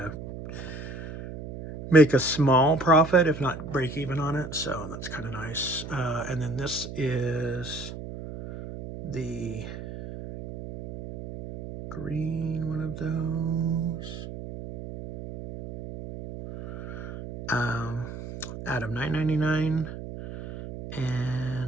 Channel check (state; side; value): noise; right; hum, 10 dB below the sound